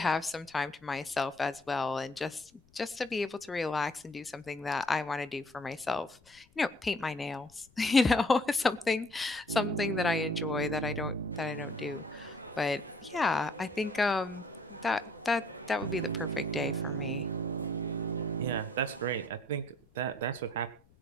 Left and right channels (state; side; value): noise; left; rumble, 30 dB below the sound